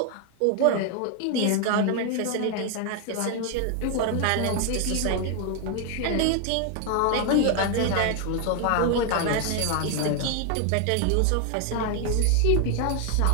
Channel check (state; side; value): different; both; correlation 0.01